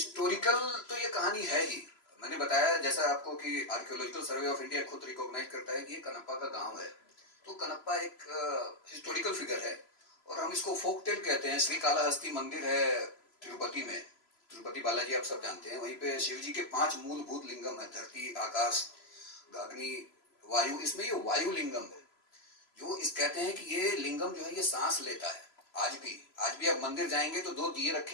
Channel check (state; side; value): late; right; 3.0 ms